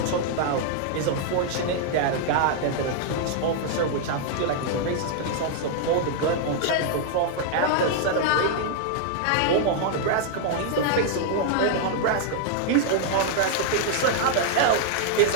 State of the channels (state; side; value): different; both; correlation -0.01